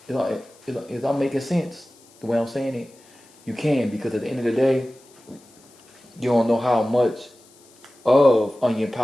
Is that making sense? The way I'm saying it, you can, because at the end of the day, you don't know how much of onion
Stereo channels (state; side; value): noise; left; hiss, 28 dB below the sound